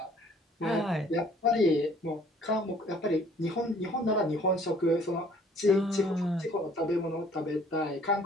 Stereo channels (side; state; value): both; normal; correlation 0.57